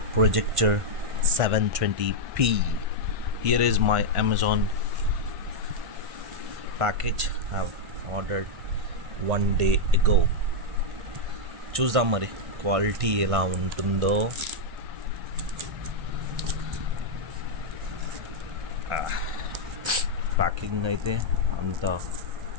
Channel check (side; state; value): left; late; 1.5 ms